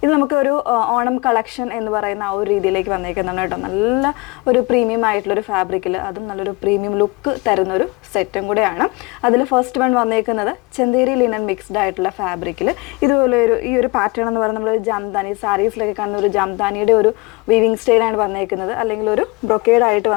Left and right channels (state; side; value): quieter; right; 25.1 dB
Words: ഇത് നമുക്ക് ഒരു ഓണം കളക്ഷൻ എന്ന് പറയുന്ന ആ ഒരു രീതിയിലേക്ക് വന്നേക്കുന്നതാണ് കേട്ടോ. നല്ല ഒരു പ്രീമിയം ആയിട്ടുള്ളൊരു ഫാബ്രിക്കിൽ അതും നല്ലൊരു പ്രീമിയം ലുക്ക് തരുന്നൊരു സെറ്റും കൂടെയാണ്. അതിൽ ഫസ്റ്റ് വൺ വന്നേക്കുന്നത് ചന്തേരി ലിനൻ മിക്സ്ഡ് ആയിട്ടുള്ള ഫാബ്രിക്കിൽ ഇതുപോലെ ഈ ഒരു പാറ്റേൺ എന്ന് പറയുന്നത് നമ്മൾ ജംദാനി സാരീസിലൊക്കെ കാണുന്ന ഒരു ജംദാനിയുടെ ഒരു വീവിങ് സ്റ്റൈലാണ് വന്നേക്കുന്നത്, അല്ലെങ്കിൽ ഒരു ബ്രൊക്കേഡ് ആയിട്ട്